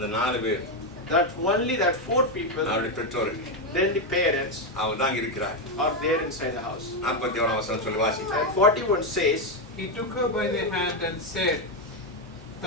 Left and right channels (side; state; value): both; normal; correlation 0.06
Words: 4 பேர் That only that 4 people, அவருடைய பெற்றோர்கள் then the parents அவங்க தான் இருக்கிறார். are there inside the house. 41 வசனம் சொல்லி வாசிங்க. And 41 says, He took her by the hand and said,